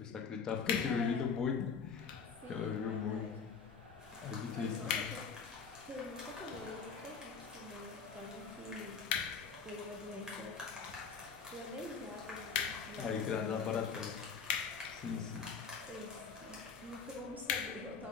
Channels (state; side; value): quieter; right; 5.9 dB